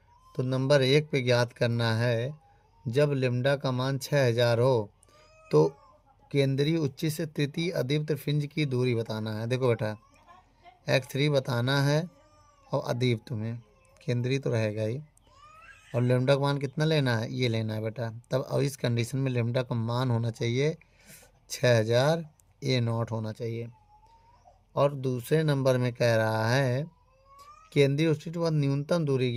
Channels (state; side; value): identical; both; correlation 1.00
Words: तो नंबर 1 पे ज्ञात करना है, जब लेमडा का मान 6000 हो तो केंद्रीय उच्ची से तृतीय अदीप्त फ्रिंज की दूरी बताना है। देखो बेटा, X3 बताना है और अदीप्त में केंद्रीय तो रहेगा ही, और लेमडा का मान कितना लेना है, ये लेना है बेटा। तब अब इस कंडीशन में लेमडा का मान होना चाहिए 6000 A0 होना चाहिए। और दूसरे नंबर में कह रहा है केंद्रीय उच्चित व न्यूनतम दूरी